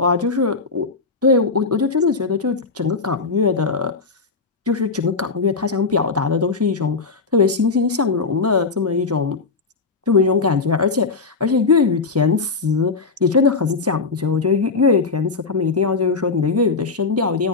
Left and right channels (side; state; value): right; quieter; 4.3 dB